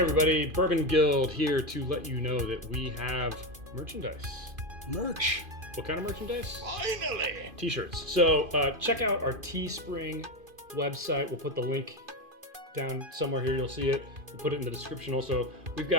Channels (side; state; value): left; late; 2.5 ms